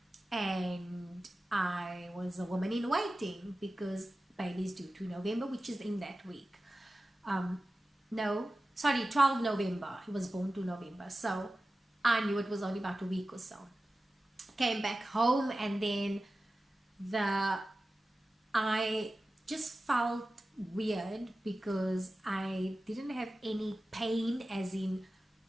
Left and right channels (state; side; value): normal; both; correlation 0.95